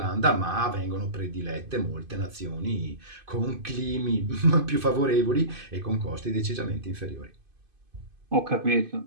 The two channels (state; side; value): late; left; 2.5 ms